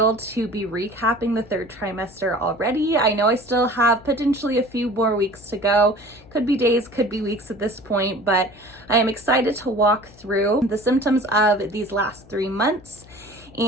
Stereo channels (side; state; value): left; noise; hum, 24 dB below the sound